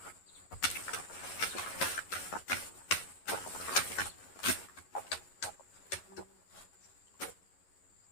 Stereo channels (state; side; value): late; right; 11 ms